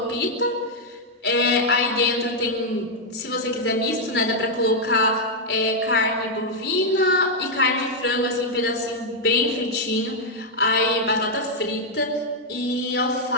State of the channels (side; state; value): both; normal; correlation -0.02